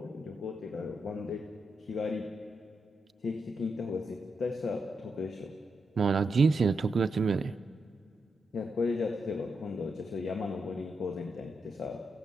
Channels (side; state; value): both; normal; correlation 0.84